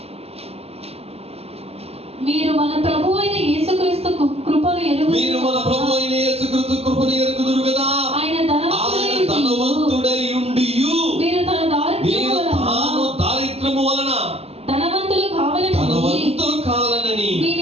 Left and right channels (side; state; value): left; late; 0.29 ms